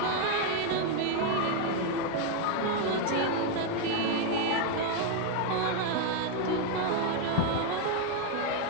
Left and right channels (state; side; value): different; both; correlation 0.01